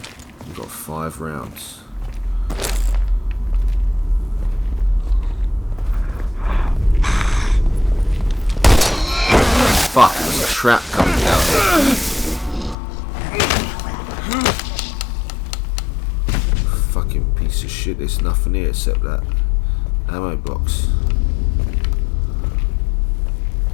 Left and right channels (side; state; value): right; drops out; at 12.8 s